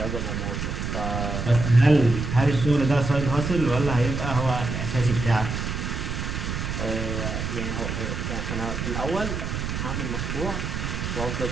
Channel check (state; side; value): noise; right; rumble, 3 dB below the sound